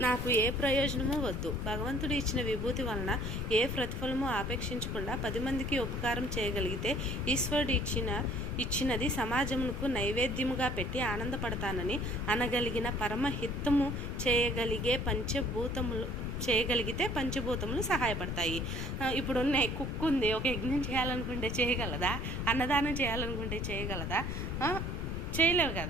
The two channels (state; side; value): noise; left; rumble, 3 dB below the sound